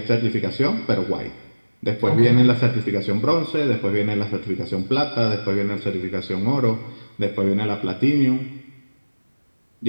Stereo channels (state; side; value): inverted; both; correlation -1.00